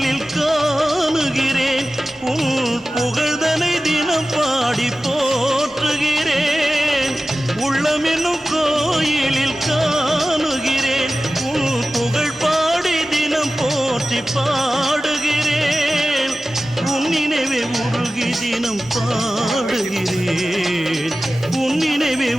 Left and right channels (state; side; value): normal; both; correlation 0.95